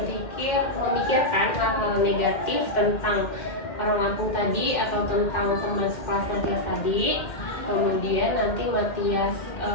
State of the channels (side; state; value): right; late; 2.1 ms